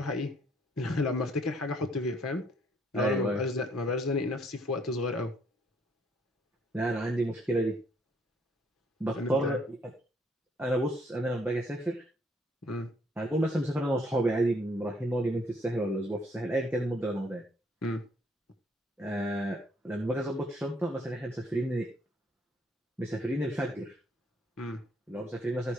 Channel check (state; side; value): normal; both; correlation 0.66